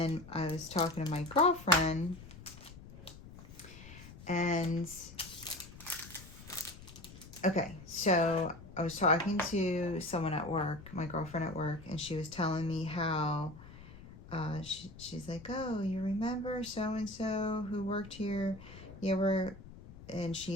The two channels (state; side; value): noise; left; rumble, 17 dB below the sound